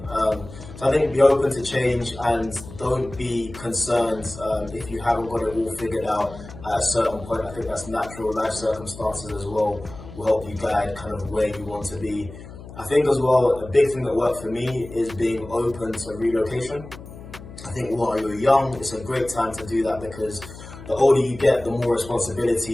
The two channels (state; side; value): noise; left; hum, 15 dB below the sound